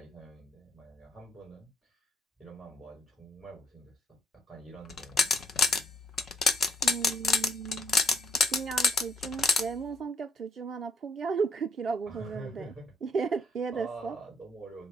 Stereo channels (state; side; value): normal; both; correlation 0.68